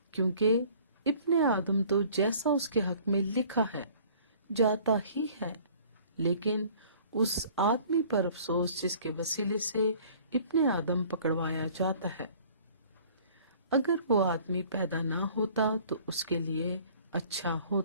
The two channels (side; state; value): both; inverted; correlation -0.52